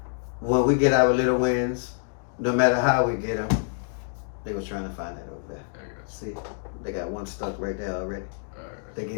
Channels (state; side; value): silent; right; digital silence